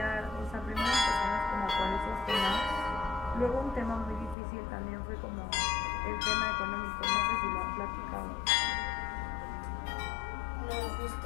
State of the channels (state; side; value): drops out; right; at 4.4 s